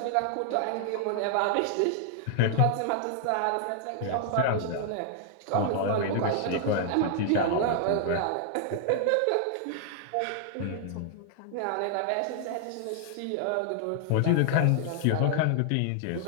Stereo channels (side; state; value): both; different; correlation 0.00